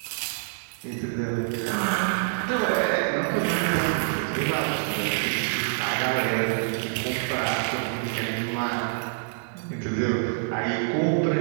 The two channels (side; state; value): left; silent; digital silence